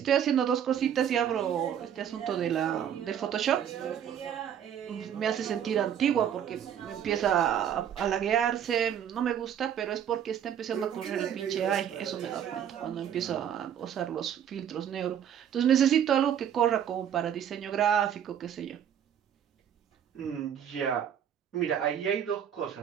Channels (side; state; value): left; quieter; 9.2 dB